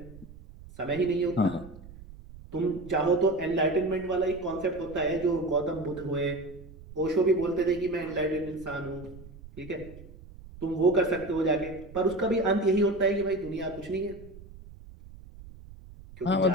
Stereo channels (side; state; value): right; noise; rumble, 18 dB below the sound